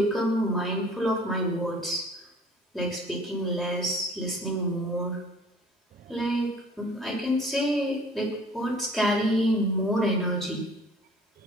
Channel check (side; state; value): both; normal; correlation 0.50